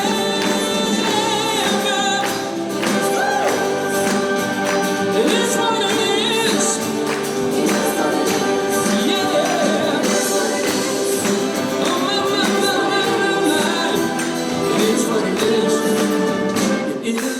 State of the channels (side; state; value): both; identical; correlation 1.00